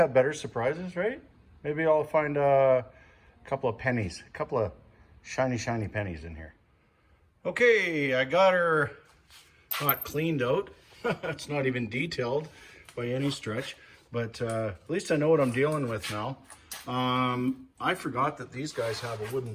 better surprises, right? Maybe I'll find a couple of pennies, a couple of shiny pennies in here. Okay, I got her not cleaned out. It's not even detailed by any stretch, but at least I know what I'm dealing with now. I forgot that these guys have a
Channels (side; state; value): both; identical; correlation 1.00